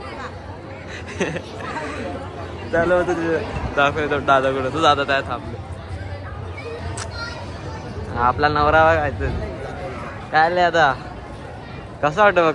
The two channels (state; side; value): identical; both; correlation 1.00